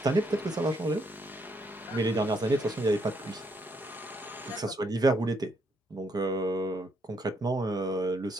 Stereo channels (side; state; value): both; normal; correlation 0.74